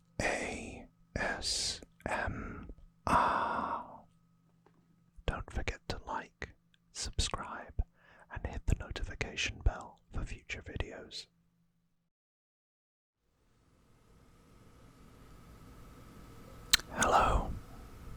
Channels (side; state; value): both; identical; correlation 1.00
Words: ASMR. Don't forget to like, subscribe, and hit the notification bell for future videos. Hello,